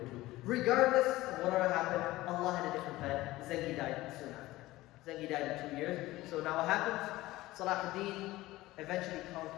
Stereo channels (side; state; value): right; quieter; 17.8 dB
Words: two. Regardless of whatever happened, Allah had a different plan. Zengi died soon after. Zengi died in 2 years. So now what happens? Salahuddin eventually